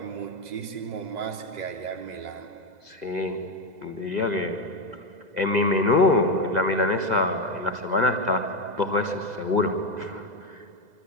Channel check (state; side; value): late; left; 2.0 ms